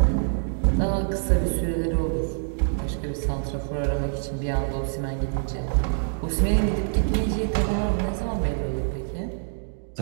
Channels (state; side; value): silent; left; digital silence